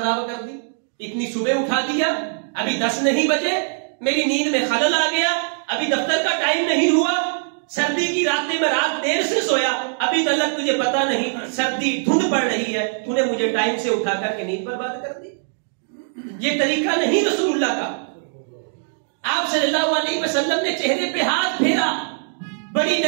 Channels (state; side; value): silent; left; digital silence